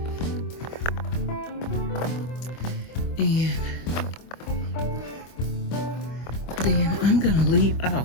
And then I'm gonna leave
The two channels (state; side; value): late; right; 25 ms